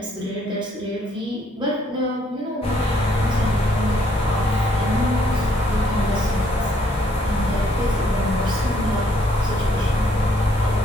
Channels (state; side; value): normal; both; correlation 0.68